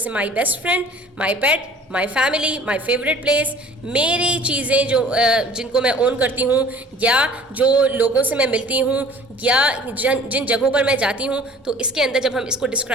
my best friend, my pet, my family, my favourite place, मेरी चीज़ें जो जिनको मैं ओन करती हूँ या जो लोगों से मैं मिलती हूँ या जिन जगहों पर मैं जाती हूँ, तो इसके अंदर जब हम इसको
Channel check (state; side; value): normal; both; correlation 0.49